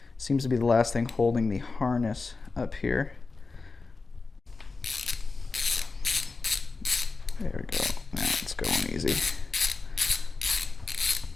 Seems to be the last thing holding the harness up here. There we go. Now it's going easy.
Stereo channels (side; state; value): right; quieter; 4.0 dB